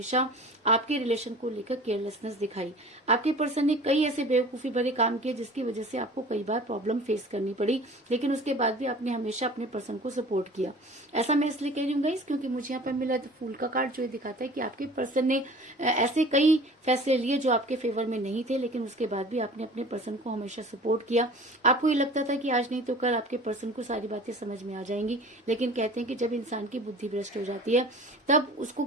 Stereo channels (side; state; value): both; normal; correlation 0.44